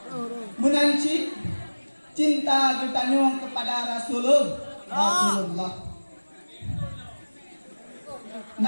Menancip cinta kita nyong kepada Rasulullah.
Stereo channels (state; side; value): inverted; both; correlation -1.00